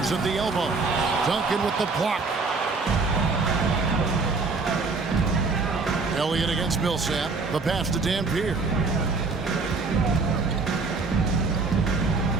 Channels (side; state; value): left; quieter; 4.1 dB